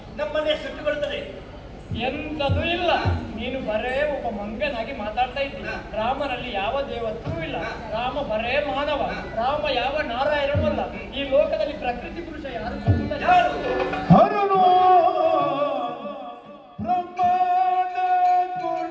ನಮ್ಮನ್ನೇ ಸುಟ್ಟುಕೊಳ್ತದೆ. ಎಂತದೂ ಇಲ್ಲ. ನೀನು ಬರೇ ಒಬ್ಬ ಮಂಗನಾಗಿ ಮಾತಾಡ್ತಾ ಇದ್ದಿ. ರಾಮನಲ್ಲಿ ಯಾವ ದೇವತ್ವೂ ಇಲ್ಲ. ರಾಮ ಬರೇ ಮಾನವ. ರಾಮ ಯಾವ ನಾರಾಯಣನೂ ಅಲ್ಲ. ಈ ಲೋಕದಲ್ಲಿ ಪ್ರಕೃತಿ ಪುರುಷ ಯಾರು ಗೊತ್ತಿಲ್ಲ. ಯಾರು? ಹರನು ಬ್ರಹ್ಮಾಂಡ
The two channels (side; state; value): both; identical; correlation 1.00